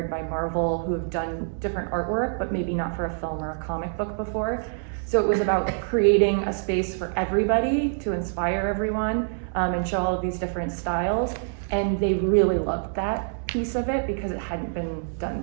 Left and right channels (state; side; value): silent; left; digital silence